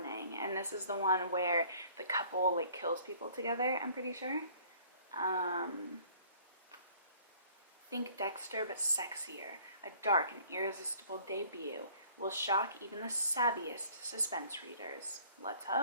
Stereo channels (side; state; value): both; inverted; correlation -0.55